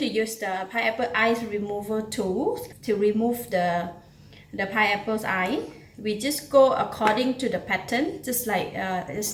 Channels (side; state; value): both; identical; correlation 1.00